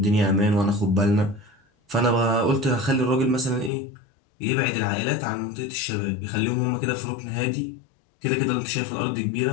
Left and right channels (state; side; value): drops out; right; at 3.7 s